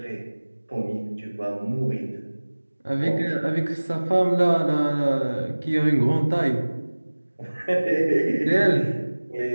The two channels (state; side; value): inverted; both; correlation -1.00